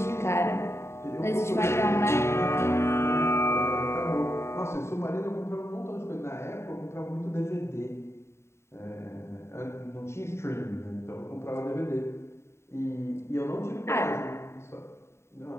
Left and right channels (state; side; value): late; right; 0.13 ms